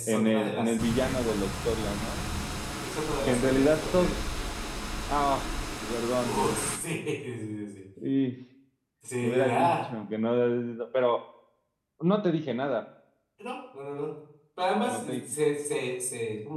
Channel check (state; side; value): identical; both; correlation 1.00